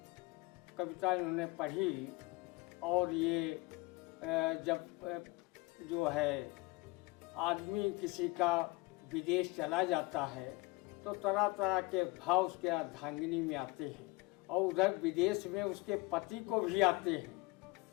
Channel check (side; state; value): right; quieter; 23.4 dB